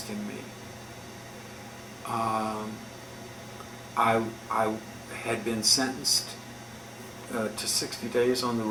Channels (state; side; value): identical; both; correlation 1.00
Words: me. I had been sentenced to 60 days on the